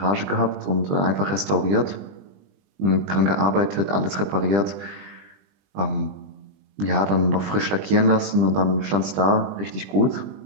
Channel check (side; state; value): left; late; 20 ms